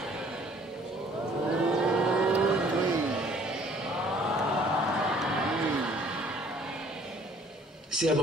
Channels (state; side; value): normal; both; correlation 0.57